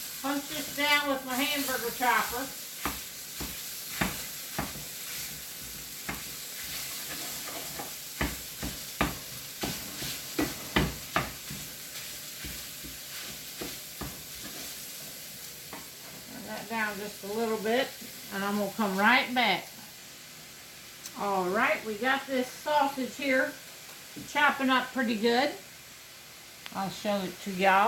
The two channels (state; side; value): identical; both; correlation 1.00